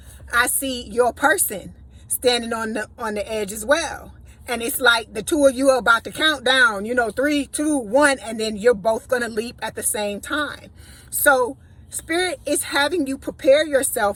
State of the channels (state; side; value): identical; both; correlation 1.00